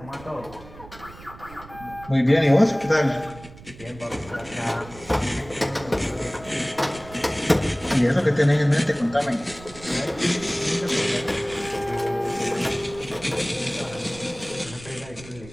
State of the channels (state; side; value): noise; right; rumble, 18 dB below the sound